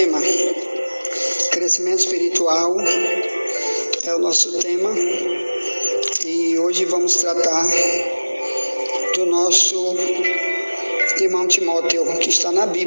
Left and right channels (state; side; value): inverted; both; correlation -1.00